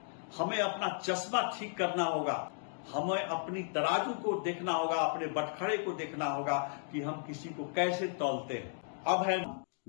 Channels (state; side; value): silent; right; digital silence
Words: हमें अपना चश्मा ठीक करना होगा, हमें अपनी तराजू को देखना होगा, अपने बटखरे को देखना होगा कि हम किसी को कैसे तौलते हैं। अब है